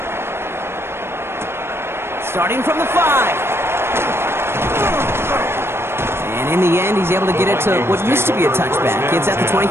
Starting from the 5. And in the end, he's able to get it to what used to be a touchback. It's at the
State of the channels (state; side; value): late; left; 0.12 ms